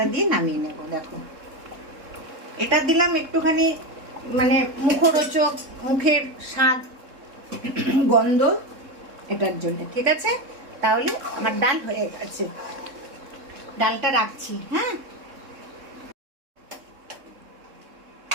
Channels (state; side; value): late; left; 3.7 ms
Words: দিয়ে নামিয়ে নেব। দেখো, এটা দিলাম একটুখানি মানে মুখরোচক, মুখের স্বাদ গন্ধ এটার জন্য। ঠিক আছে, তাহলে আমার ডাল হয়ে গেছে। ডালটা রাখছি। হ্যাঁ,